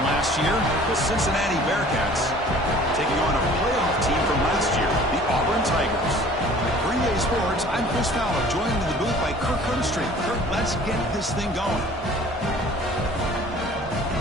last year, the Cincinnati Bearcats, taking on a playoff team from last year, the Auburn Tigers. For EA Sports, I'm Chris Fowler, joined in the booth by Kirk Herbstreit. Kirk, let's get this thing going.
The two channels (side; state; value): both; normal; correlation 0.49